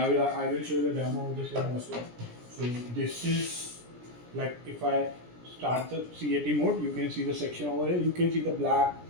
I will show the demo of the same also. So this is like if I start the CAT mode, you can see the section over here. You can see the black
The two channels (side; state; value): left; late; 17 ms